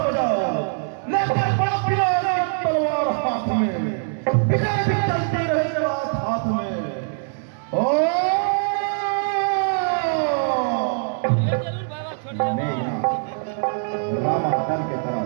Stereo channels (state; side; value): silent; left; 64 dB below the other